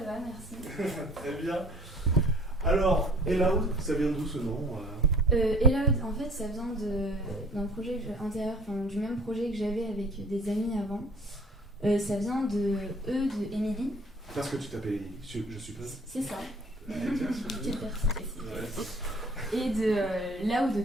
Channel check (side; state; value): both; normal; correlation 0.51